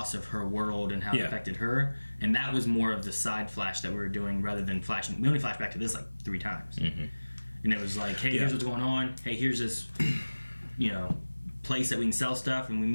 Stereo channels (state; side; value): inverted; both; correlation -1.00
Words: of her world and how it affected her. And that was more of the side flash that we were doing rather than flashing. We only flashed back to this like 3 times. And it was like, hey, here's what's going on. Hey, here's this, place that we can sell stuff, and we